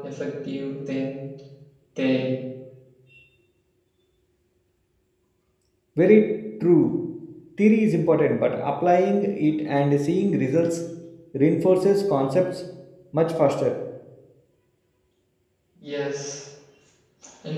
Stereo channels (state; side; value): identical; both; correlation 1.00